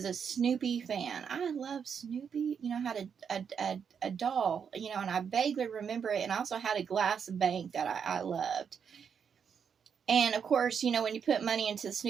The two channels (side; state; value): left; quieter; 7.0 dB